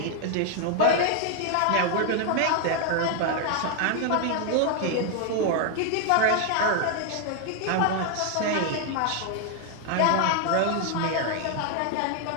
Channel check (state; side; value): different; both; correlation 0.00